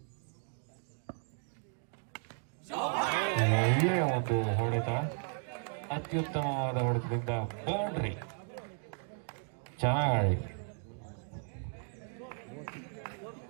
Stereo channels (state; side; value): silent; left; 55 dB below the other